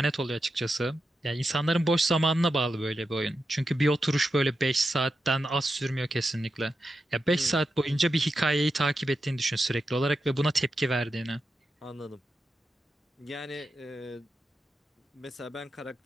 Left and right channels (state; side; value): normal; both; correlation 0.88